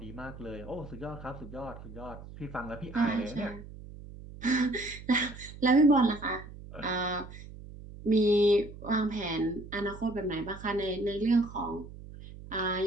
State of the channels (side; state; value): right; noise; hum, 15 dB below the sound